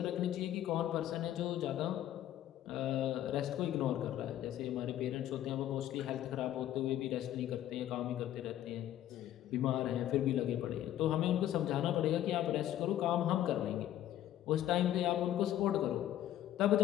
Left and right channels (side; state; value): right; quieter; 12.4 dB